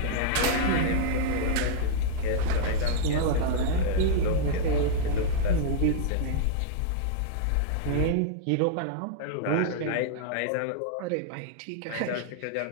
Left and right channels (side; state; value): both; different; correlation -0.01